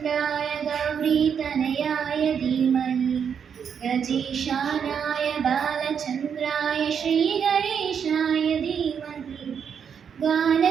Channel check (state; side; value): quieter; left; 7.4 dB